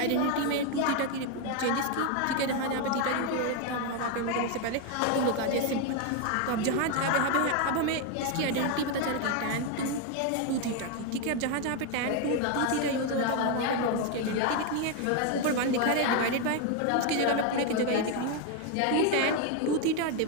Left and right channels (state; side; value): different; both; correlation 0.01